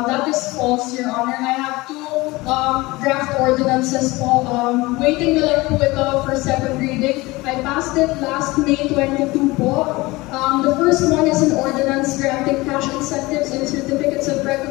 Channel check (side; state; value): right; quieter; 21.6 dB